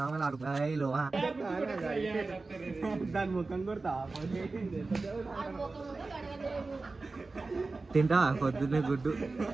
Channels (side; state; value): left; quieter; 3.7 dB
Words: దాని ముఖం కొడతా తింటా పొద్దున్నే గుడ్డు.